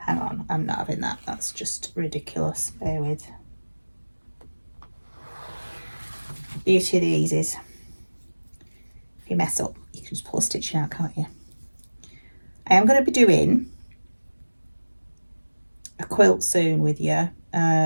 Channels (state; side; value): inverted; both; correlation -1.00